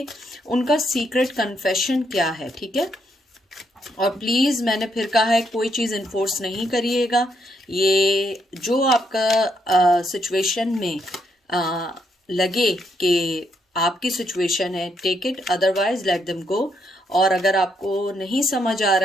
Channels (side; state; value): both; normal; correlation 0.76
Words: उनका सीक्रेट कन्फेशन क्या है, ठीक है। और प्लीज़ मैंने फिर कहा है कोई चीज़ इन्फोर्स नहीं करिएगा। ये जो आपका सिचुएशन में लगे कि आपकी सिचुएशन है, take it, otherwise let them go. और अगर आपको नहीं समझ आ